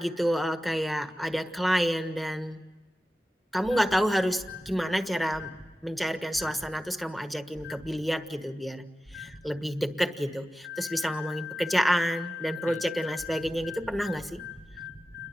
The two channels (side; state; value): both; normal; correlation 0.93